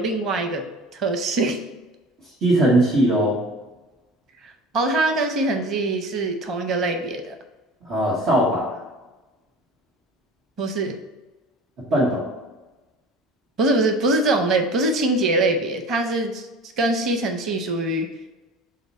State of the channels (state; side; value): normal; both; correlation 0.39